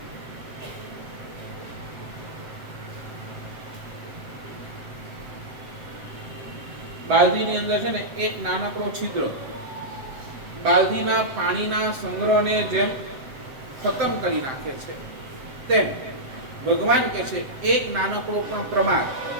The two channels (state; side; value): late; left; 7.8 ms